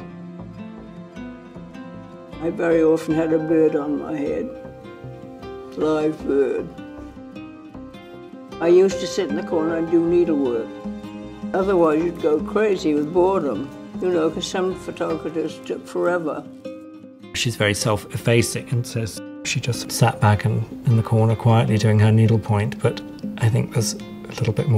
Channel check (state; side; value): identical; both; correlation 1.00